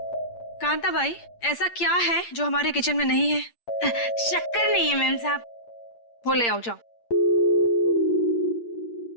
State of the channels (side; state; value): right; late; 8.6 ms